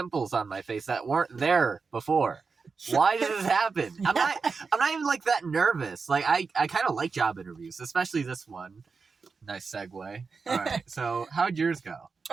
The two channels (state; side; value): quieter; left; 4.9 dB